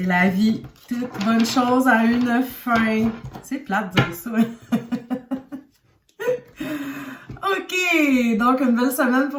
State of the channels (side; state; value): both; identical; correlation 1.00